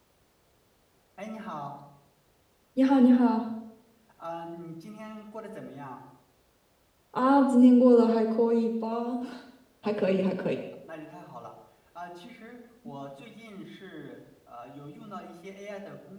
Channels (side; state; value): both; identical; correlation 1.00